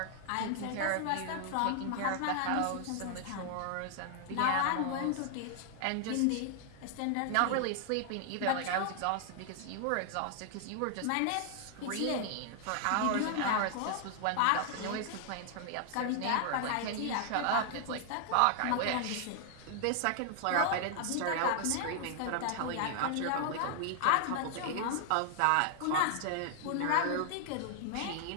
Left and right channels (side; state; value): both; different; correlation 0.00